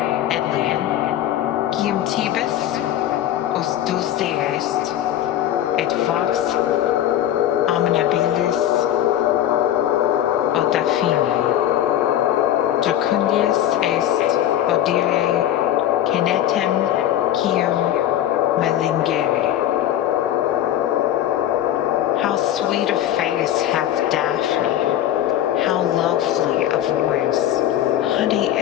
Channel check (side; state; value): right; quieter; 11.9 dB